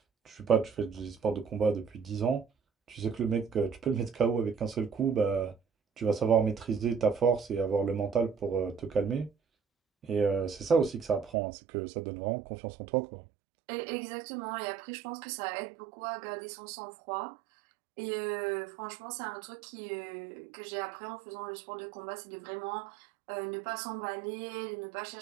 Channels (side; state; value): left; drops out; at 11.3 s